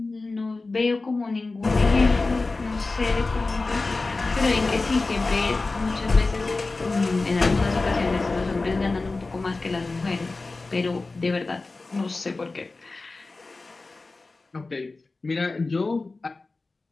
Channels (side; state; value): right; quieter; 3.5 dB